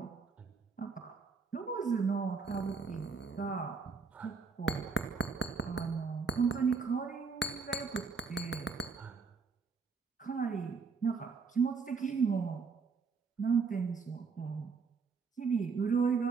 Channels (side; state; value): left; quieter; 5.1 dB